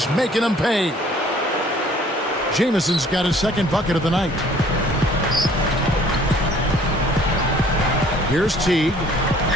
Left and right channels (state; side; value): normal; both; correlation 0.56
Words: making him pay. Jamison's got his second bucket of the night. Here's Teague.